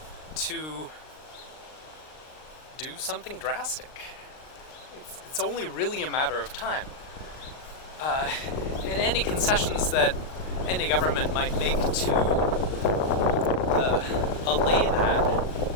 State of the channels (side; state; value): right; late; 39 ms